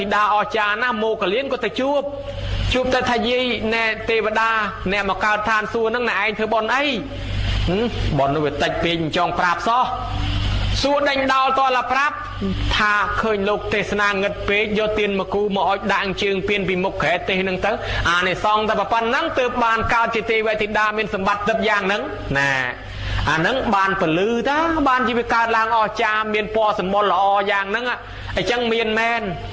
ីតាអស្ចារ្យណាស់មោគលានក៏ទៅជួបទៅថាយាយណែទេវតាអ្នកមកកើតឋានសួគ៌ហ្នឹងណែឯងធ្វើបុណ្យអីបុណ្យនោះវាតិចពេកចង់ប្រាប់សោះសួរដេញដោលតលប្រាប់ថាឃើញលោកទេសនាងឹតពេកយកទៀនមកគូមកអុជដាក់ជើងពៀនពីមុខក្រែទេសហ្នឹងទៅអានេះសងតែប៉ុណ្ណឹងទើបបានកើតជាទេវធីតាមានសម្បត្តិទឹកយ៉ាងហ្នឹងណាអាហ្នឹងបានពលឺតាបានជីវិតកើតឡើងអស្ចារ្យមានពណ៌សម្បុរល្អយ៉ាងហ្នឹងអញ្ចឹងមានមែន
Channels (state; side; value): identical; both; correlation 1.00